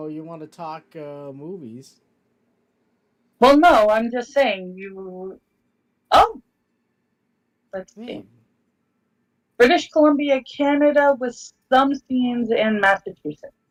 want to talk movies? Well, no, I'm just saying you. Oh, let's see. Man, British Columbia, Canada, with some scenes in Massachusetts.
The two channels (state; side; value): identical; both; correlation 1.00